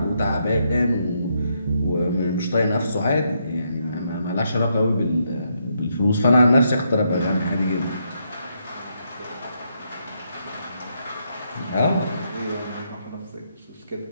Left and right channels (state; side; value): inverted; both; correlation -0.78